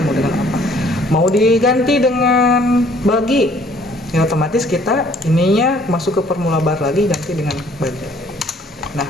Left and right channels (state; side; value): normal; both; correlation 0.59